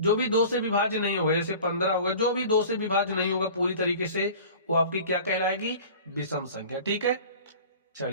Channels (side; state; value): both; inverted; correlation -0.42